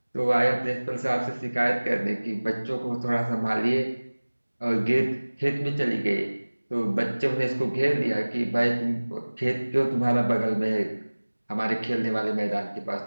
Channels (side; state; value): both; inverted; correlation -1.00